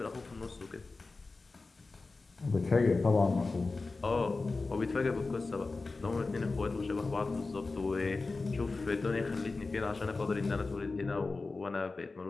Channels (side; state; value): right; quieter; 3.7 dB